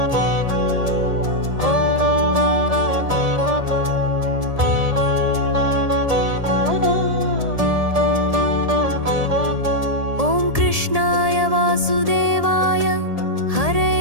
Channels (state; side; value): late; left; 1.7 ms